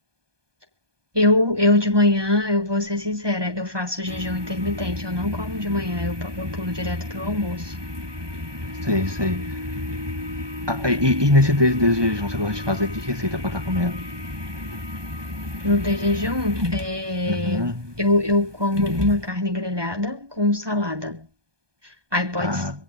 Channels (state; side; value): late; left; 1.2 ms